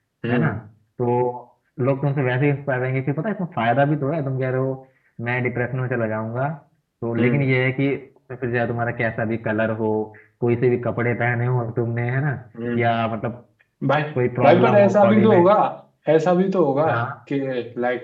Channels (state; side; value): identical; both; correlation 1.00